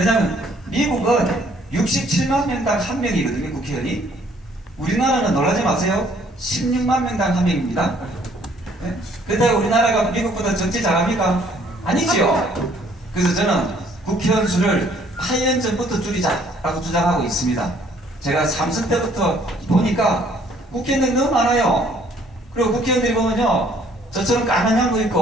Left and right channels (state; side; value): normal; both; correlation 0.62